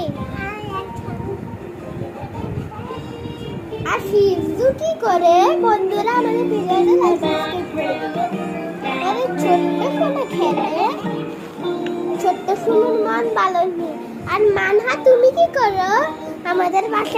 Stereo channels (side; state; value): both; identical; correlation 1.00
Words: আর ফিজু কি করে? বন্ধুরা আমাদের ভিডিওটা লাইক সাবস্ক্রাইব করে দিবেন। আরে ছোট্ট ফোনে খেলে, ছোট্ট ফোনের মন ভালো নেই। আর মানহা তুমি কি করো? আমাদের